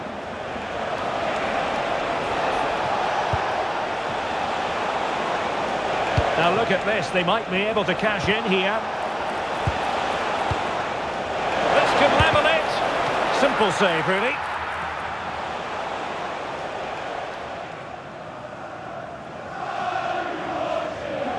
Now look at this, they might be able to cash in here. This could level it. Simple save, really.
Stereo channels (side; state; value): both; identical; correlation 1.00